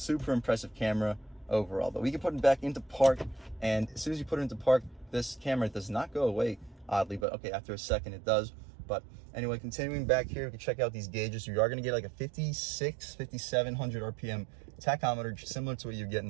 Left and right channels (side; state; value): left; drops out; at 7.2 s